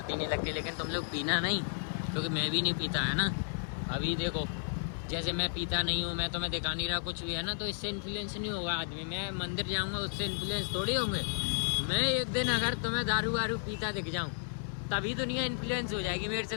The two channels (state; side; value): silent; right; digital silence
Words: नहीं लगती। लेकिन तुम लोग पीना नहीं, क्योंकि मैं भी नहीं पीता, है ना। अभी देखो जैसे मैं पीता नहीं हूँ, मैं तुम्हें दिखा नहीं रहा कुछ भी, है ना, तो इससे इन्फ्लुएंस नहीं होगा आदमी। मैं मंदिर जाऊँगा उससे इन्फ्लुएंस थोड़ी होंगे। मैं एक दिन अगर तुम्हें दारू वारू पीता दिख जाऊँ तभी दुनिया इन्फ्लुएंस हो जाएगी मेरे से